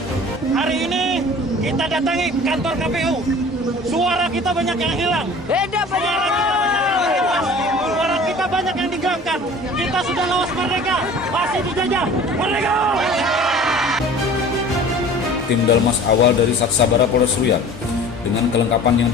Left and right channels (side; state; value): both; normal; correlation 0.44